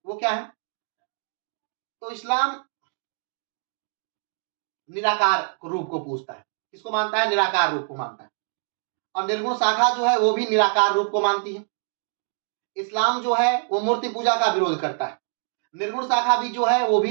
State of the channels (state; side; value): silent; left; 62 dB below the other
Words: वो क्या है? तो इस्लाम निराकार रूप को पूजता है। किसको मानता है? निराकार रूप को मानता है। और निर्गुण शाखा जो है वो भी निराकार रूप को मानती है। इस्लाम जो है वो मूर्ति पूजा का विरोध करता है। निर्गुण शाखा भी जो है वो